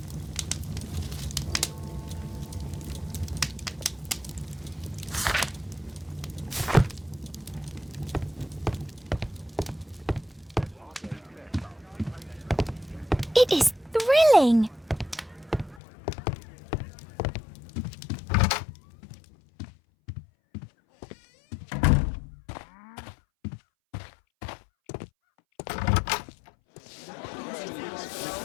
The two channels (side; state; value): right; drops out; at 15.8 s